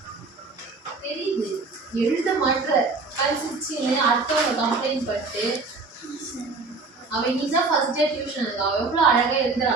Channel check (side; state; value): left; quieter; 4.0 dB